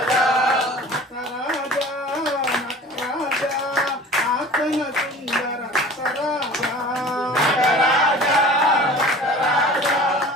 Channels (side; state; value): both; normal; correlation 0.42